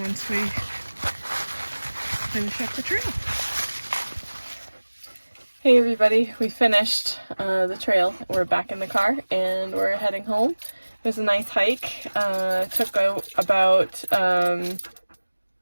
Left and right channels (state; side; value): inverted; both; correlation -1.00